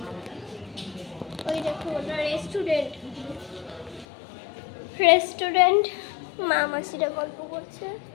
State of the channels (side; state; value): right; drops out; at 4.0 s